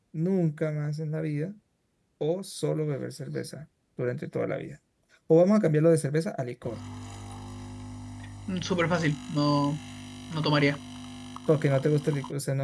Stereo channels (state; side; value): identical; both; correlation 1.00